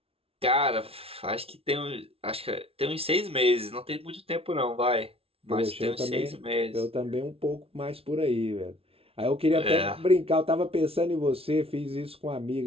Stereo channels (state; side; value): late; left; 0.27 ms